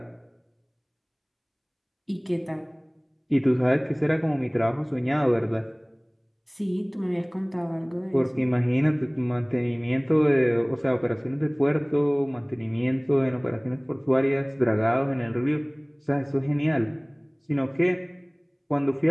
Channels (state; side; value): identical; both; correlation 1.00